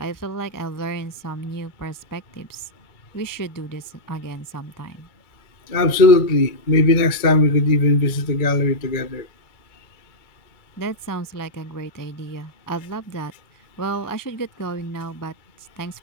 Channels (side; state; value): right; late; 2.2 ms